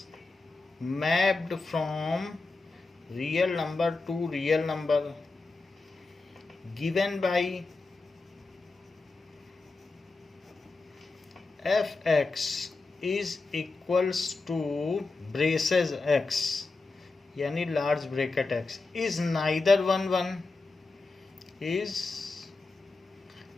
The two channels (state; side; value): quieter; right; 3.7 dB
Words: mapped from real number to real number given by fx is equals to braces x यानी large bracket x is neither 1 1 is